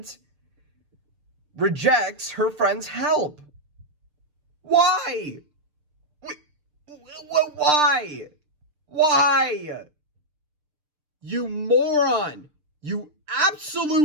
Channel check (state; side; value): late; left; 6.7 ms